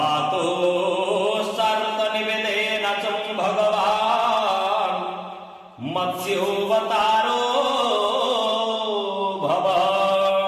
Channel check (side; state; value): both; identical; correlation 1.00